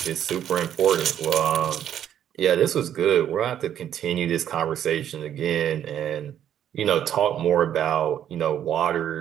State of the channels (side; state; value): left; quieter; 10.2 dB